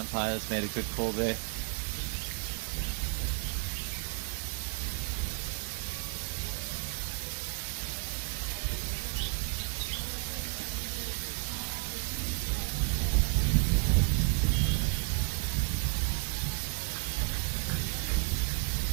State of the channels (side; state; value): left; quieter; 36.3 dB